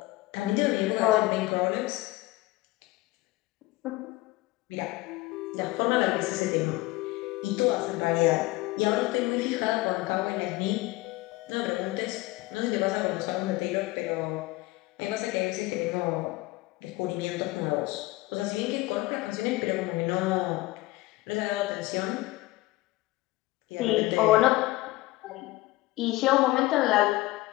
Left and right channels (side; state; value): right; quieter; 19.7 dB